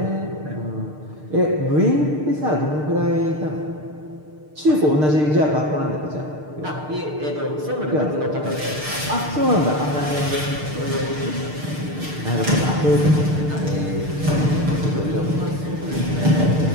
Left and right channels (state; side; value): late; left; 6.6 ms